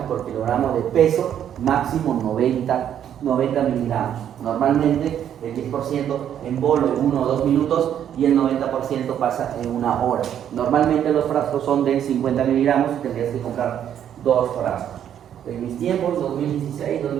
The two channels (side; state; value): left; quieter; 9.8 dB